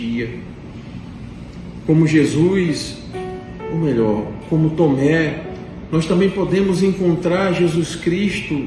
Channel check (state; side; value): identical; both; correlation 1.00